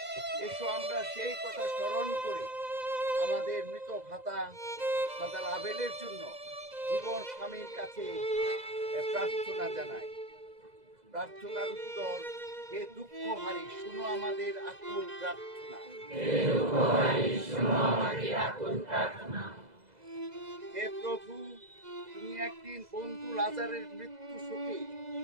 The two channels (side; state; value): left; late; 2.0 ms